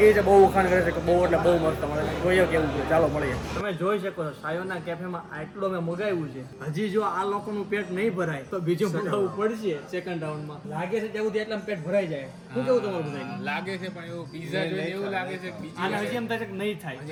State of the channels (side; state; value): both; identical; correlation 1.00